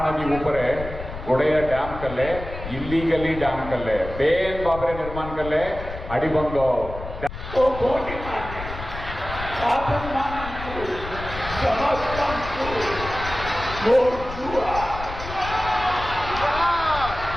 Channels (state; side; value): noise; left; rumble, 10 dB below the sound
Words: ऊपर गोड़े डैम कले इलीगली डैम कले बेन बाबरे निर्माण कले अड़बंद